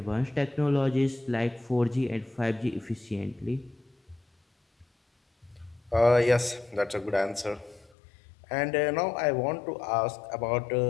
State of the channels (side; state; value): right; drops out; at 7.9 s